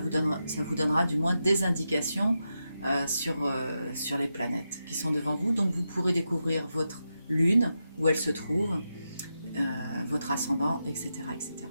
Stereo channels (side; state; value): both; inverted; correlation -0.88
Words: donnera du moins des indications sur les planètes qui sont devant vous. Donc vous pourrez découvrir votre lune, où elle se trouve, votre ascendant, etc., etc.